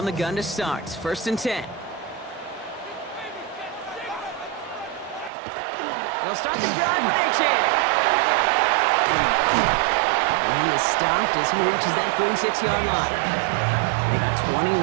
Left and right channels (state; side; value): drops out; left; at 5.3 s